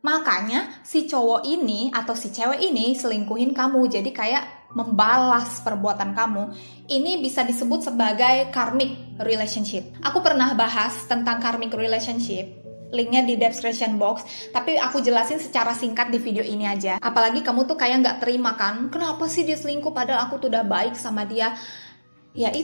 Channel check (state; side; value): inverted; both; correlation -1.00